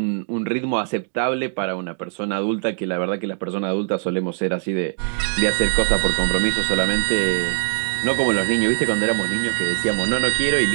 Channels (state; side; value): silent; left; digital silence